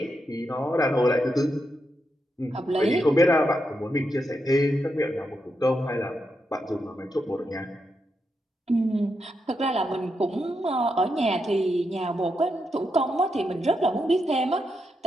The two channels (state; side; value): normal; both; correlation 0.84